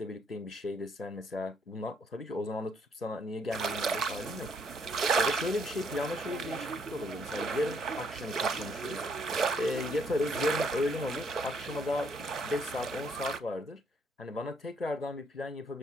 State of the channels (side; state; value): both; normal; correlation 0.69